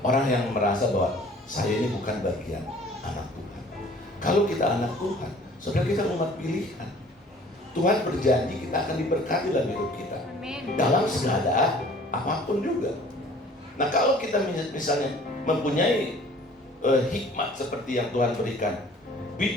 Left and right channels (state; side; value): normal; both; correlation 0.51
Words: Orang yang merasa bahwa saya ini bukan bagian anak Tuhan. Kalau kita anak Tuhan, saudara, kita umat pilihan. Tuhan berjanji kita akan diberkati dalam hidup kita. Dalam segala apapun juga. Nah, kalau kita misalnya mempunyai hikmat seperti yang Tuhan berikan,